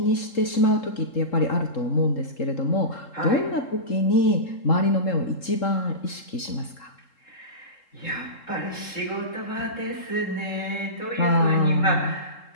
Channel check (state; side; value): late; right; 3.7 ms